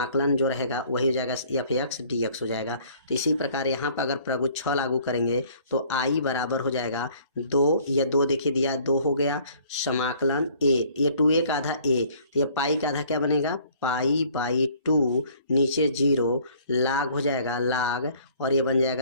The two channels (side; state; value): both; inverted; correlation -0.56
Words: जो रहेगा वही हो जाएगा एफ एक्स डी एक्स हो जाएगा। तो इसी प्रकार यहाँ पर अगर प्रगुण 6 लागू करेंगे तो i बराबर हो जाएगा 2, या 2 देखिए दिया 2 हो गया, समाकलन a, ये 2a का आधा a, तो ये पाई का आधा क्या बनेगा पाई/2, नीचे 0, लाग हो जाएगा लाग और ये बन